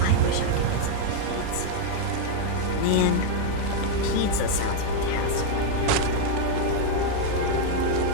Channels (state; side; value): different; both; correlation 0.00